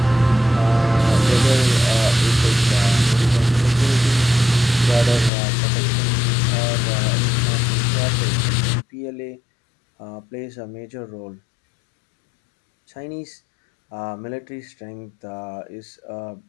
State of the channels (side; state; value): right; drops out; at 5.3 s